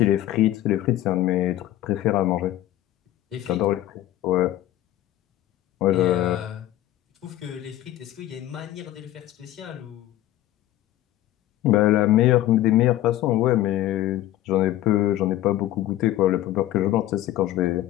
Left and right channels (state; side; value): quieter; right; 14.1 dB